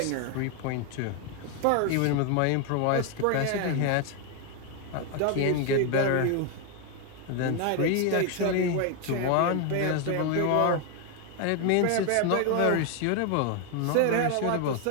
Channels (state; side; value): different; both; correlation 0.01